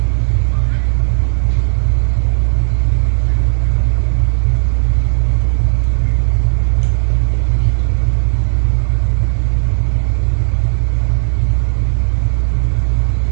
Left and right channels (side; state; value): left; silent; 70 dB below the other